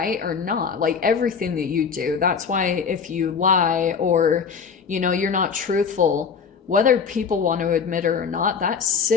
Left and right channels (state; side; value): quieter; right; 6.1 dB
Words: or not, like everything that you do. That's why if you lie or you're not truthful, whether people want to admit it or not, that